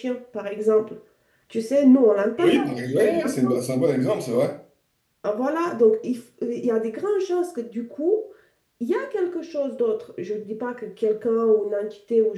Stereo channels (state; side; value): identical; both; correlation 1.00